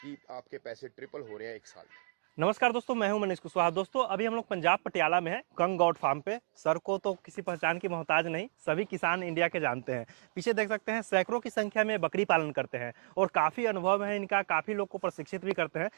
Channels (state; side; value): silent; left; digital silence